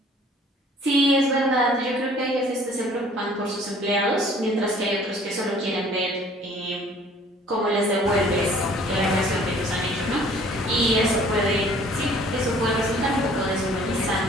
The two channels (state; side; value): normal; both; correlation 0.54